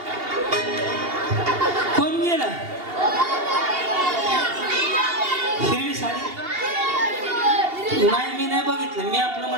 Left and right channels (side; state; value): left; late; 2.8 ms